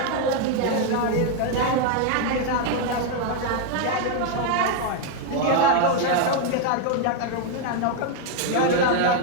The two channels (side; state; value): both; different; correlation 0.01